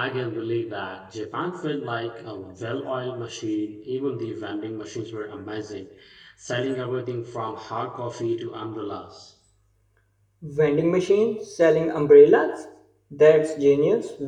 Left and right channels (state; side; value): identical; both; correlation 1.00